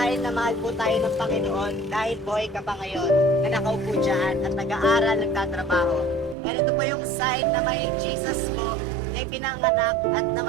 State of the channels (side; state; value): left; drops out; at 6.4 s